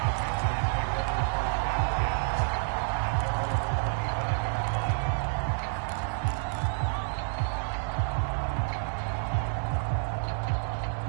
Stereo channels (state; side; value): silent; left; 59 dB below the other